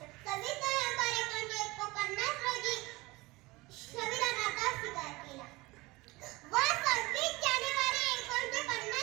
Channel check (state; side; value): quieter; left; 22.0 dB